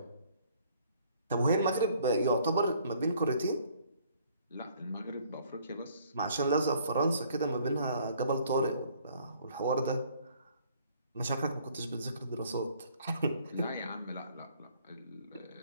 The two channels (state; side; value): inverted; both; correlation -0.60